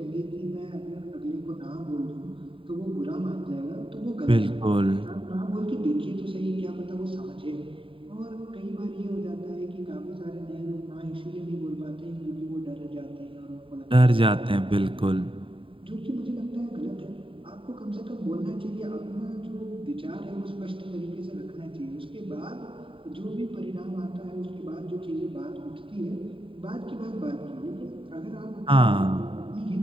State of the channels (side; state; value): left; late; 0.25 ms